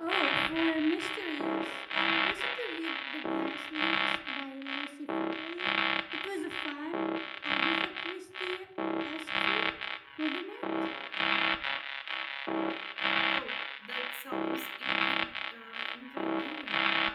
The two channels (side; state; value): both; identical; correlation 1.00